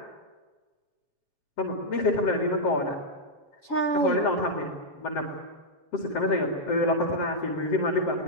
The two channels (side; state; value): right; late; 7.1 ms